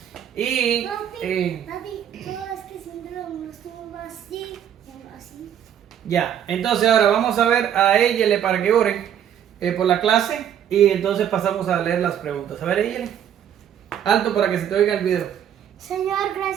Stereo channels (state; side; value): quieter; left; 9.6 dB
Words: Y Papi, todo es que siempre lo estuvo así. ya, entonces ahora vamos a ver a Eyele para que oren por la clase y entonces pasamos a leer las preguntas. A ver, Eyele, alto para que se te oiga el video. Señor,